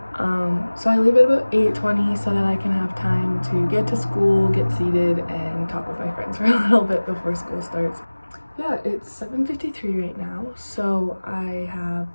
So I leave at about 8:20 so that I can have time to get to school, get seated, and talk with my friends for a little bit before school starts. Yeah, it's 7:53 right now, so I have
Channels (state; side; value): inverted; both; correlation -1.00